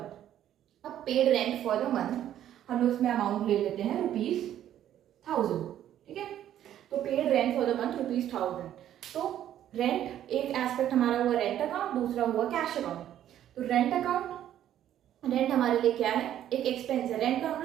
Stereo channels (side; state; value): left; quieter; 11.3 dB